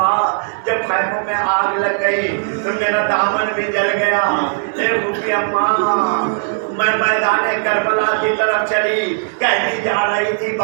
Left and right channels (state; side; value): silent; left; digital silence